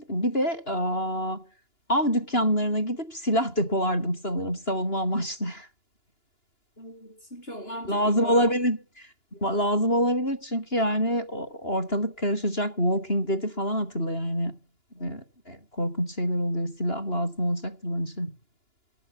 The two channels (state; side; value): late; right; 2.9 ms